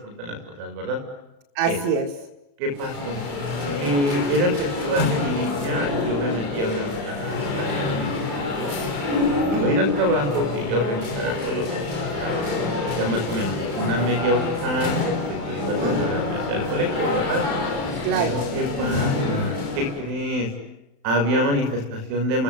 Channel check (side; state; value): left; late; 35 ms